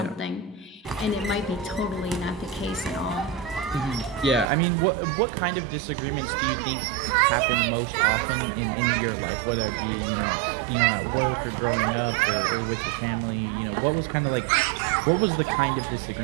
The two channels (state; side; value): drops out; left; at 4.5 s